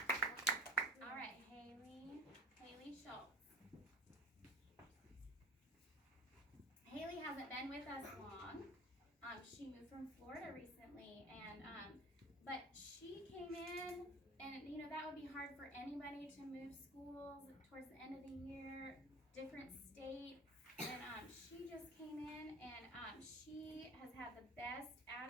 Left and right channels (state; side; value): normal; both; correlation 0.41